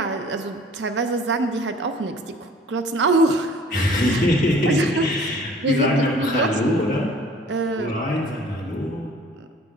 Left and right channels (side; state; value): both; normal; correlation 0.51